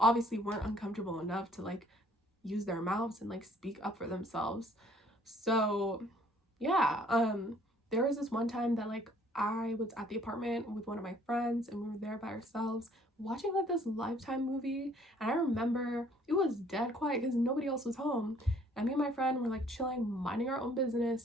weren't uncomfortable enough to like use their mouths and like speak up for themselves. So yeah, there was this one time that like I was at the apartment with one of my friends, and we were there by ourselves watching like this Lifetime movie, and I remember it was dead quiet because nobody else was home, and me and my friend were like chilling, minding our own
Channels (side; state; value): both; normal; correlation 0.59